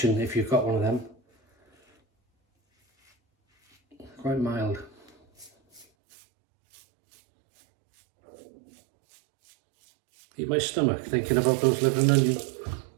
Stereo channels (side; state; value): left; drops out; at 5.9 s